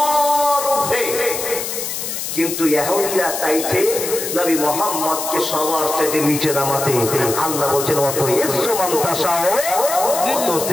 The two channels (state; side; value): noise; left; hiss, 5 dB below the sound